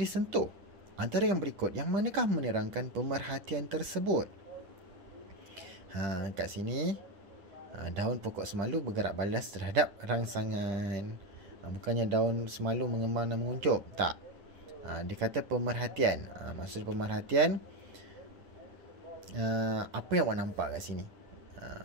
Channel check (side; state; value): left; late; 10 ms